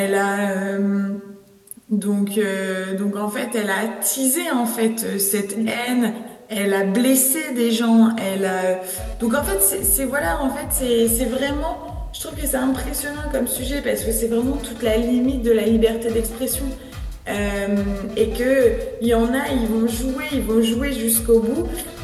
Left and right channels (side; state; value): both; identical; correlation 1.00